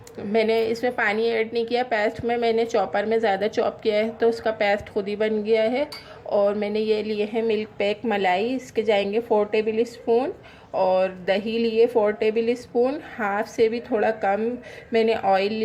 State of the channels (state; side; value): identical; both; correlation 1.00